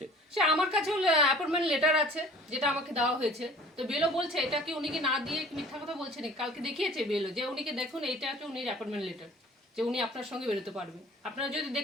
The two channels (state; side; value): normal; both; correlation 0.48